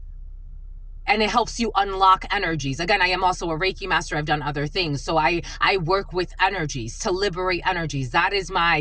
And it helps you unlock energies. Again, I am also a Reiki master. I've done other things. So I work with energies to liberate energies. That's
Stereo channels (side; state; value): both; identical; correlation 1.00